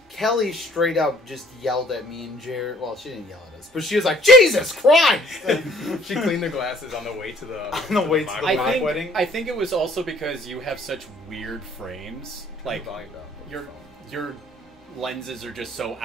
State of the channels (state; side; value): normal; both; correlation 0.59